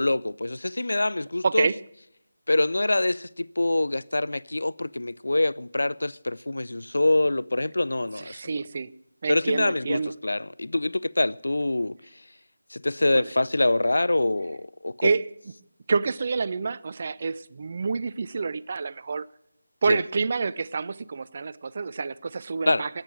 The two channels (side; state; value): both; inverted; correlation -0.95